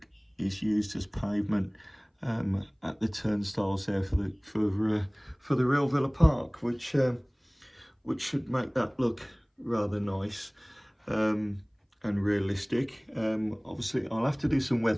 is used as pavement at the turnstiles there for the real Villa Park, which should make that look rather nice and realistic. Obviously I'll have to do some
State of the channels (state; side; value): identical; both; correlation 1.00